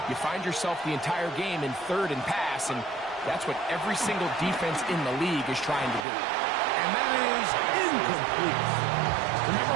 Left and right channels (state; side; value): drops out; left; at 6.1 s